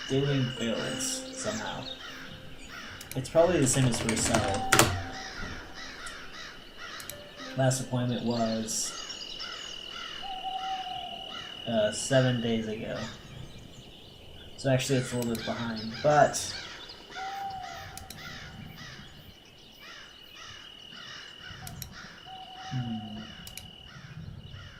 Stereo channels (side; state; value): both; identical; correlation 1.00